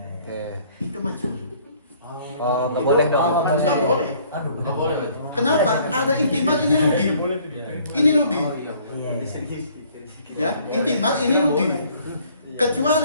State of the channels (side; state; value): both; inverted; correlation -0.58